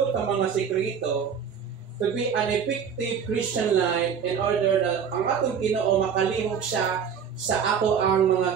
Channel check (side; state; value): left; quieter; 7.2 dB